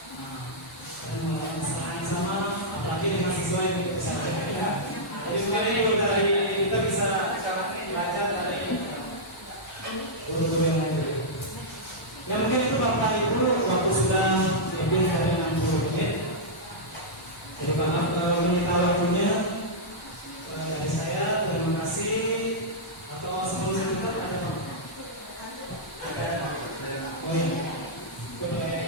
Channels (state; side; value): normal; both; correlation -0.10